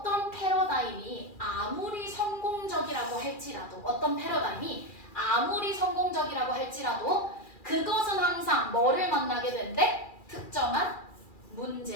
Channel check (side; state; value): right; late; 2.4 ms